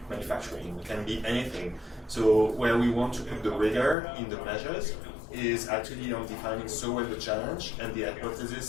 manufacturing, can be anything. So where we want to put the rigor in the measures is actually on defining so well the challenge and the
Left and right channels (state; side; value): drops out; right; at 4.0 s